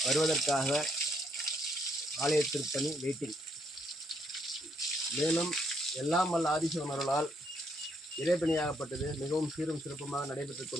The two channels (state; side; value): normal; both; correlation 0.73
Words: வருவதற்காக ஆலய திருப்பணி வெயிட்டிங். மேலும் எல்லாம் வல்ல ஆதிசிவனர்களால் இறைப்பணியாகப்பட்டது மிகவும் சீரும் சிறப்புமாக நடைபெற்றுக்